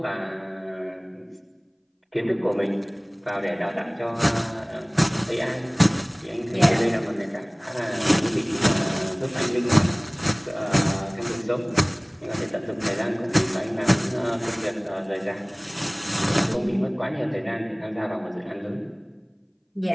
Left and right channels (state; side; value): identical; both; correlation 1.00